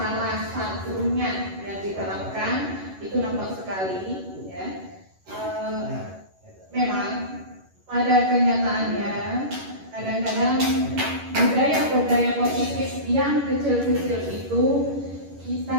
satunya yang diterapkan itu nampak sekali. Ya, memang pada kenyataannya kadang-kadang budaya-budaya positif yang kecil-kecil itu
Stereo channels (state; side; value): late; left; 11 ms